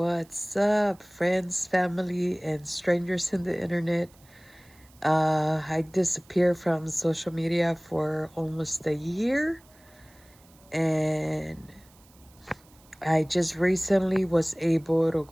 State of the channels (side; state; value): right; noise; hiss, 28 dB below the sound